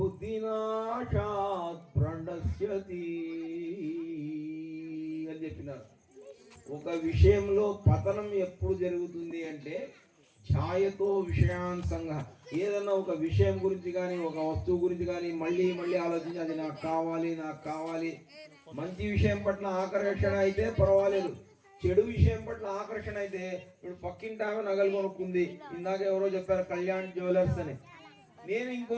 ప్రణశ్యతి అని చెప్పినారు. ఒక విషయంలో పతనం ఎప్పుడు జరుగుతుంది అంటే ఛాయతో విషయాన్ సంగ. ఏదన్నా ఒక విషయం గురించి కానీ ఒక వస్తువు గురించి కానీ మళ్ళీ మళ్ళీ ఆలోచించి అది నాకు కావాలి నాకు కావాలి. మంచి విషయం పట్ల ఆకర్షణ అయితే పర్వాలేదు, చెడు విషయం పట్ల ఆకర్షణ అయితే ఇప్పుడు పక్కింటి ఆమె నగలు కొనుక్కుంది. ఇందాక ఎవరో చెప్పారు కళ్యాణ్ జ్యువెలర్స్ అని. నేను ఇంకో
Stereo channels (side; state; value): both; identical; correlation 1.00